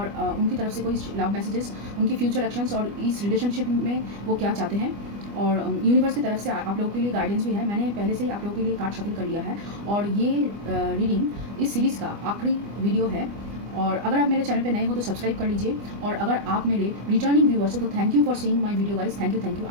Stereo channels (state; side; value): late; left; 25 ms